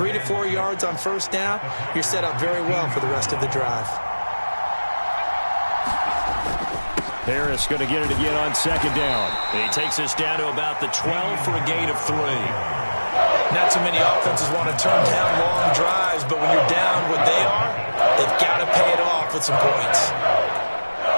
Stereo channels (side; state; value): both; inverted; correlation -1.00